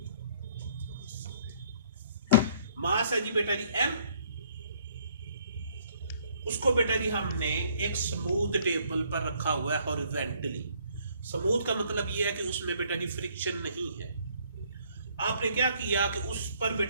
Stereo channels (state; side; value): inverted; both; correlation -0.63